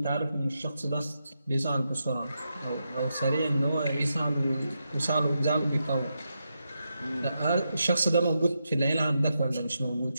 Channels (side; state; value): both; inverted; correlation -0.85